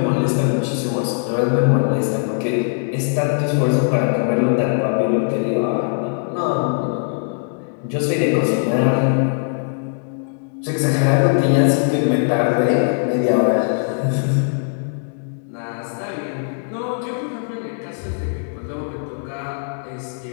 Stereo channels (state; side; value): silent; right; digital silence